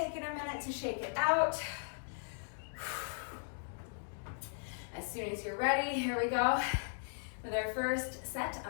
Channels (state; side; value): silent; right; digital silence